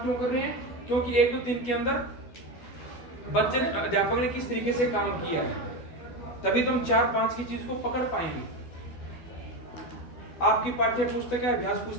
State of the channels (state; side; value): late; right; 12 ms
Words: क्यों कर रहे हैं? क्योंकि 1 2 3 के अंदर बच्चे अध्यापक ने किस तरीके से काम किया है, तभी तुम 4-5 की चीज को पकड़ पाएंगे। आपकी पाठ्य पुस्तक है, अभ्यास